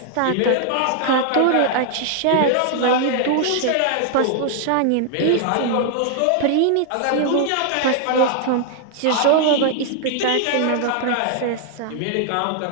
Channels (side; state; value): both; different; correlation 0.00